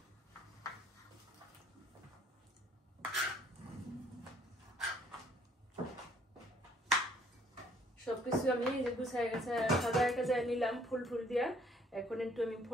সবকিছু আমি গুছাই গেছে সাজায় কাজায় নিলাম ফুল দিয়া। এখন একটু আমি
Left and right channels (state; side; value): normal; both; correlation 0.62